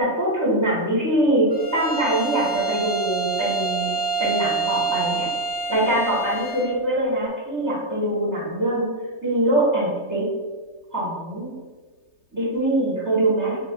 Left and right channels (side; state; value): right; late; 3.3 ms